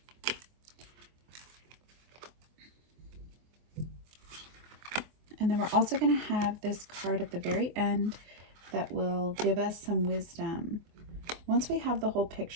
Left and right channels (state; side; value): late; left; 24 ms